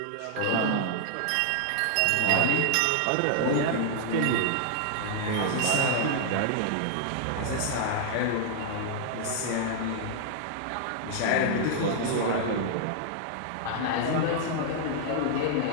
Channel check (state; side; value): different; both; correlation -0.01